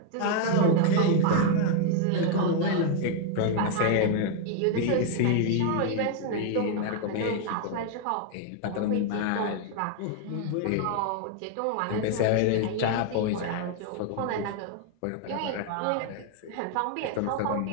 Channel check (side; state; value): both; different; correlation 0.00